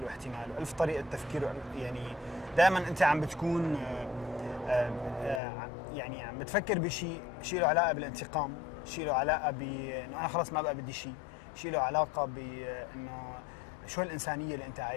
واحتمال وألف طريقه تفكير، يعني دائما انت عم بتكون يعني عم بتفكر بشيء له علاقه بالانتقام، شيء له علاقه بانه انا خلص ما بقى بدي شيء له علاقه بانه شو الانسانيه اللي انت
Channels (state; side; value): drops out; right; at 5.4 s